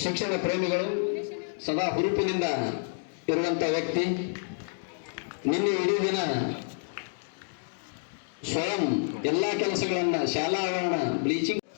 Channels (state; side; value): silent; right; digital silence